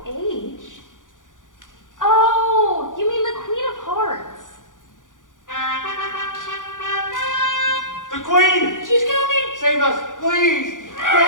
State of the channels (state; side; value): late; right; 0.88 ms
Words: H? Oh, you mean the Queen of Hearts. The Queen! She's coming! Save us, please!